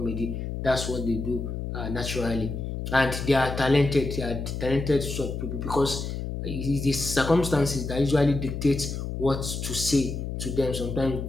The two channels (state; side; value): noise; left; hum, 5 dB below the sound